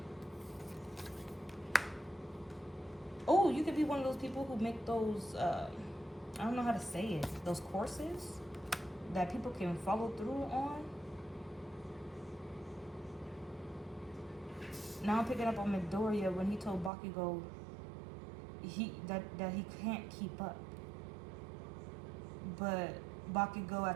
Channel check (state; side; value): drops out; left; at 16.9 s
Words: Oh, you could be one of those people who make those I don't know how to say it. Those courses that people can follow through on. Now I'm picking up on Midoriya when he told Bakugo that he can't keep up. But Bakugo